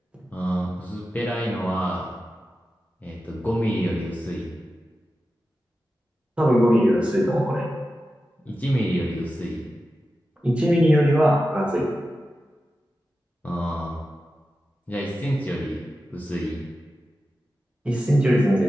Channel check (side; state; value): both; normal; correlation 0.92